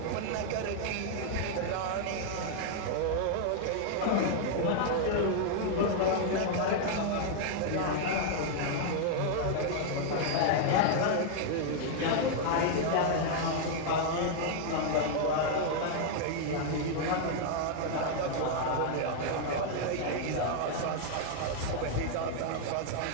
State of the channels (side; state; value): both; different; correlation 0.00